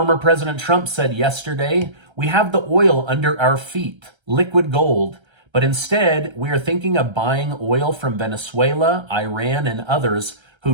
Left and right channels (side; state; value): left; late; 1.3 ms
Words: President Trump said yesterday, we have the oil under our feet, liquid gold, but instead we are thinking of buying oil from Venezuela, Iran, and others